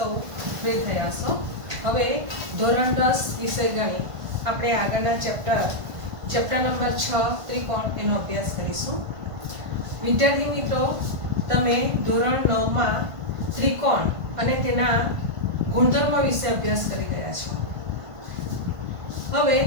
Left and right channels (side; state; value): left; late; 1.5 ms